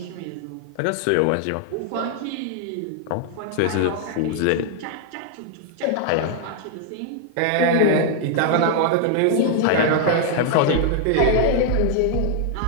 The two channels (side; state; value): both; different; correlation 0.00